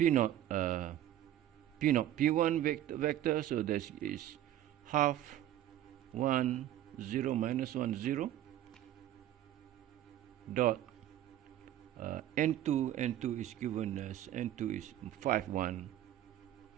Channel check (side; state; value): left; quieter; 12.5 dB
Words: p1 vector, so this is half 1 0 minus 1 0 dot n2 is given as n2 is 5 1